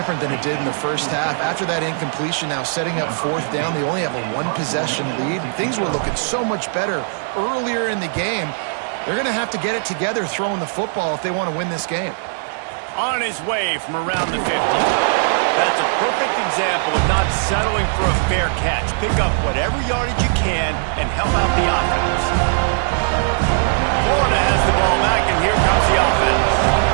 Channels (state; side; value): silent; left; digital silence